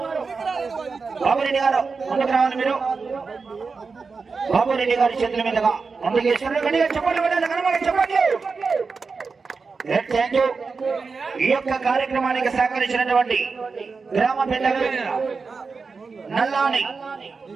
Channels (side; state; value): left; quieter; 4.7 dB